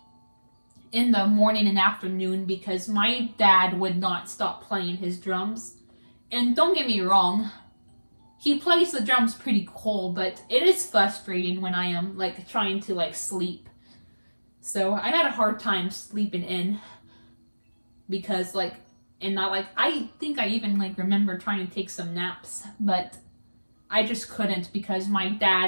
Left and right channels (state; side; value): inverted; both; correlation -1.00